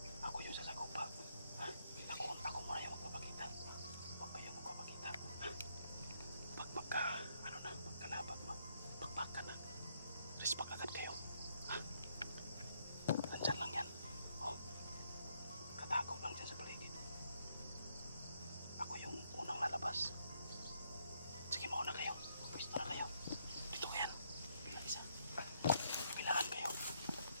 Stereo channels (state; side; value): inverted; both; correlation -0.74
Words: Ako yung sasagupa. Ha? Ako muna yung magpapakita. Huwag kayong magpapakita. Ha? Pagka, ano na, pagkalaban, pagpakan na. Respect agad kayo. Ha? Nandyan lang yan. Oh. Katago lang dyan sa paligid. Ako yung unang lalabas. Sige, mauna kayo. Pwesto na kayo. Dito kayan. Bilang isa. Kabilaan kayo.